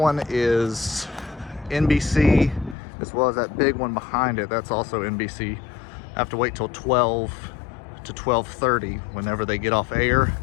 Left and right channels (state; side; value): drops out; right; at 2.8 s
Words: is NBC, as well as that big one behind it, that's also NBC. I have to wait till 12 to 12:30 whenever they get off air,